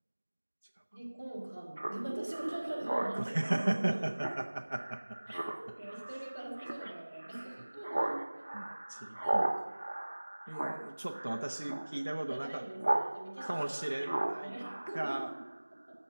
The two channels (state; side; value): inverted; both; correlation -1.00